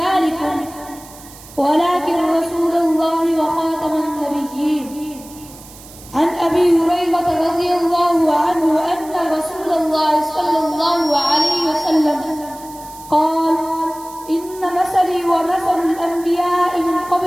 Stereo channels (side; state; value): right; noise; hiss, 19 dB below the sound